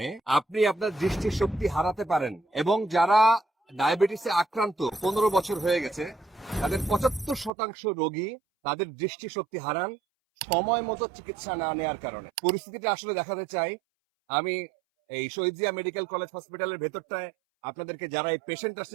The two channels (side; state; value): left; drops out; at 7.5 s